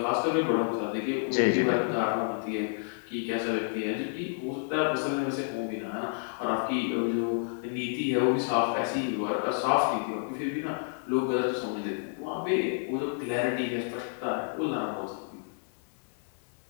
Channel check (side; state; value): right; silent; 55 dB below the other